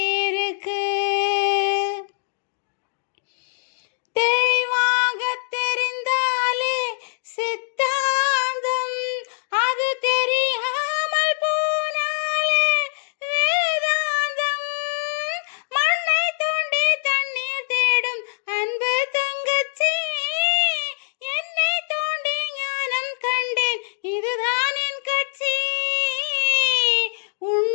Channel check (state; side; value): silent; right; digital silence